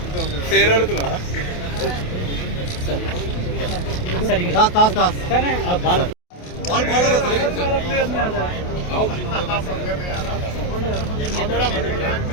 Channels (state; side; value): late; right; 28 ms